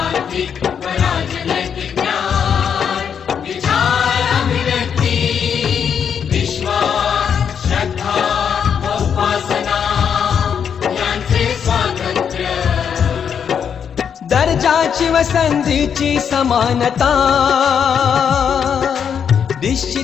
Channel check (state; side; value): quieter; right; 7.5 dB